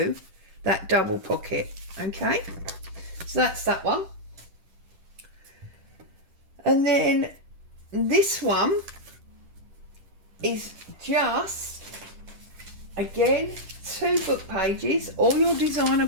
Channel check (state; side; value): late; left; 10 ms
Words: that double pocket. Okay, so that's that one. And then this one is just, again, 2 book pages, all your designer